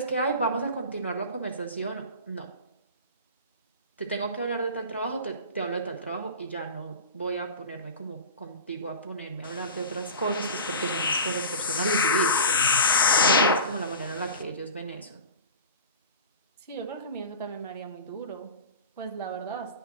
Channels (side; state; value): both; inverted; correlation -0.33